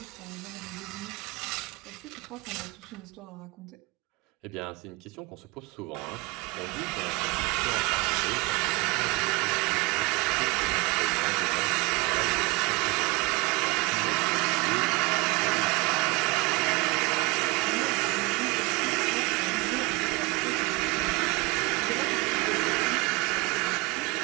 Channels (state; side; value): quieter; left; 25.6 dB